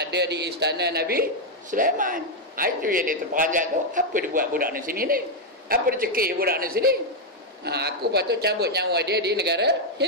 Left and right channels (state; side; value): normal; both; correlation 0.00